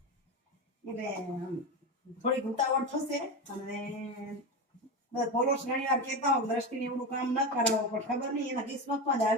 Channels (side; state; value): both; normal; correlation 0.19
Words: એટલે થોડીક ઉતાવળ થશે. અને ફોલોસ ઘણી વાર કહેતા હોય દ્રષ્ટિને એવડું કામ ન કરાવો, પણ ખબર નહીં એના કિસ્મતમાં જ